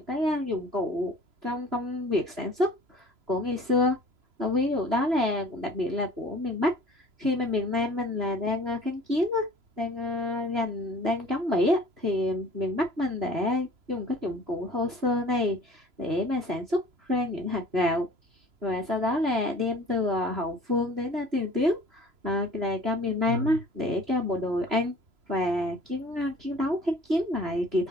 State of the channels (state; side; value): late; left; 3.0 ms